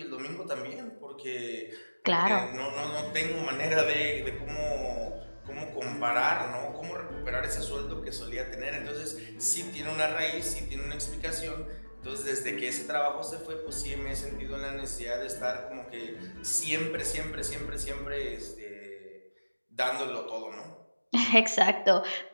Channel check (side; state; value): both; inverted; correlation -1.00